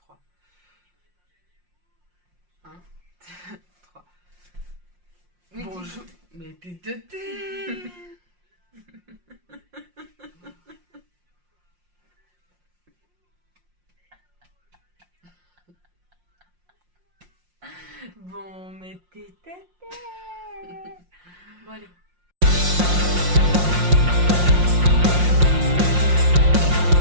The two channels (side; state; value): left; late; 5.6 ms